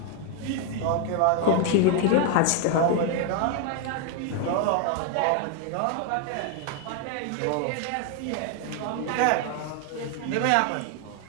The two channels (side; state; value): both; different; correlation 0.01